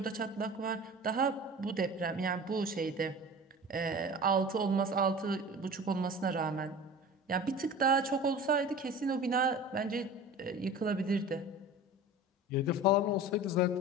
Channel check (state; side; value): normal; both; correlation 0.37